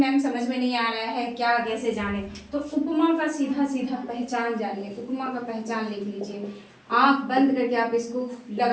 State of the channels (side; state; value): both; identical; correlation 1.00